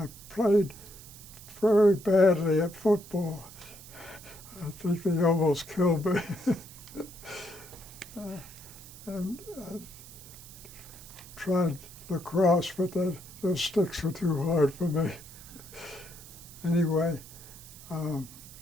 played very badly at football. I think they almost killed me. And I tried lacrosse, but those sticks were too hard for me. Anyway,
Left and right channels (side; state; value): right; noise; hiss, 17 dB below the sound